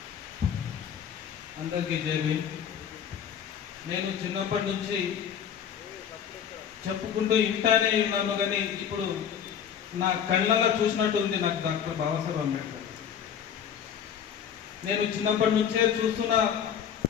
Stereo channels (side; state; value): right; quieter; 8.4 dB